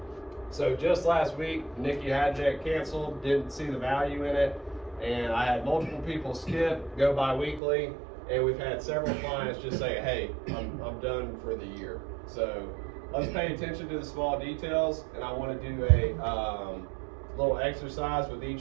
So just last week, Nikki Hajek canceled, didn't see the value in it, and I had multiple people skip, go bi-weekly, and we've had several clients just say, hey, I'm done for the year. So let's pay attention to the small details, and I want to do a little exercise with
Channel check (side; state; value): left; drops out; at 7.6 s